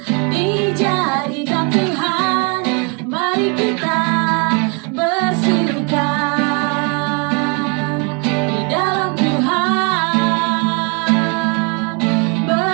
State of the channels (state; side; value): quieter; left; 34.0 dB